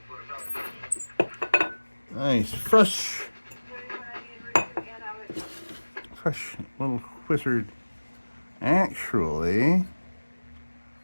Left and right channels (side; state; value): both; inverted; correlation -1.00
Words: Nice. Fresh little wizard. Actually,